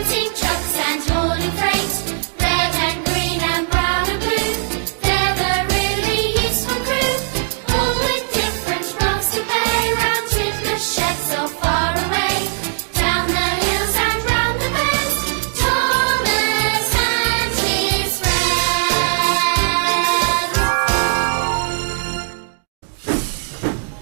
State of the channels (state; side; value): silent; left; digital silence